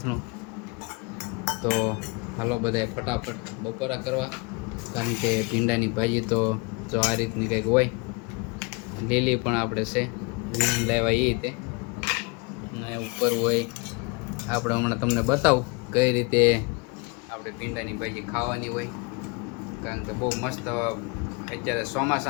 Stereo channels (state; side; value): quieter; right; 29.2 dB